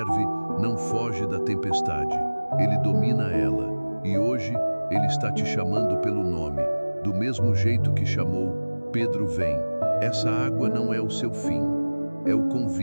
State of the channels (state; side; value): inverted; both; correlation -1.00